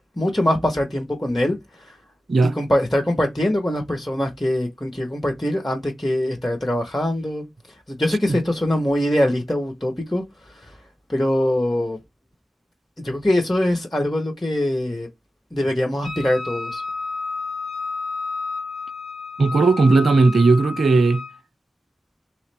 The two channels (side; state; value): both; normal; correlation 0.92